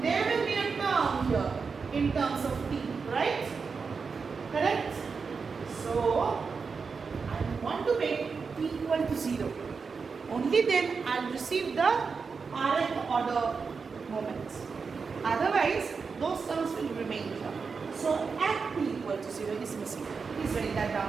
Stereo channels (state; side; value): quieter; left; 5.2 dB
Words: there will be a term here in terms of t, right? Correct? So, I want to make t equal to 0. Only then I will receive the rth order moments. Otherwise, those terms will remain here. So, at t equal to 0 is missing. Please write that down